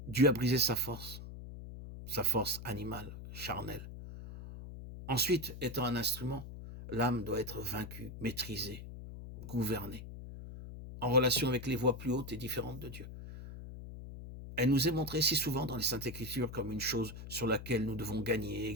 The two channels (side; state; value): left; noise; hum, 11 dB below the sound